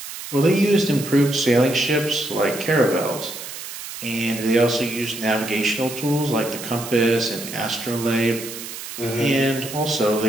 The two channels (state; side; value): noise; right; hiss, 10 dB below the sound